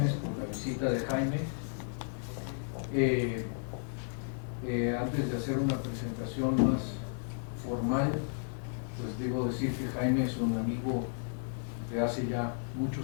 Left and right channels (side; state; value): right; silent; digital silence